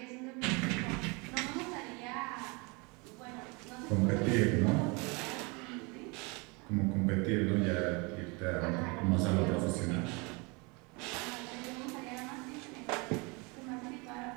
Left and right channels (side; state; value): left; quieter; 29.1 dB